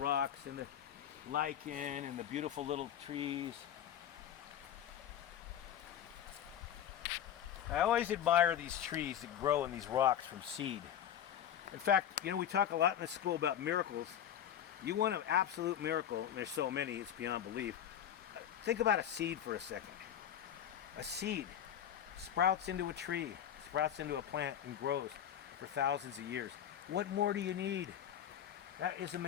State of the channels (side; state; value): right; quieter; 10.0 dB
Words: and the lichen and the beautiful little trees. I always admire these trees that grow in these rocks from seed. In fact, you know, we talk a lot in this school about miracles. You want an absolute miracle, and there's so many, it's beyond belief. Think about a seed for a second. A seed sprouts into a tree, sprouts into a plant, and grows for thousands of years. What more do you need? That is